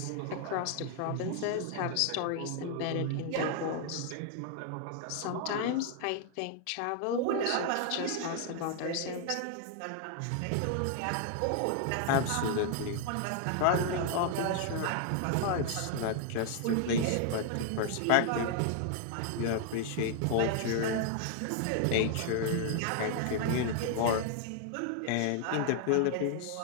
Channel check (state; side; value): different; both; correlation 0.00